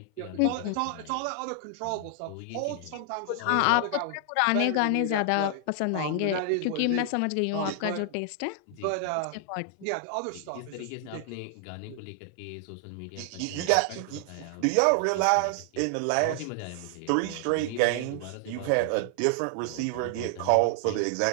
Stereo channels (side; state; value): both; different; correlation 0.00